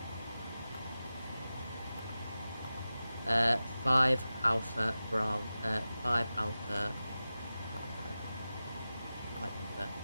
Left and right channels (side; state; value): both; inverted; correlation -0.94